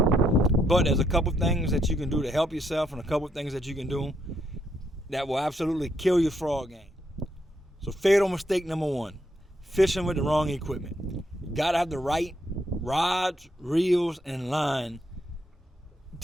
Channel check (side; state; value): both; normal; correlation 0.76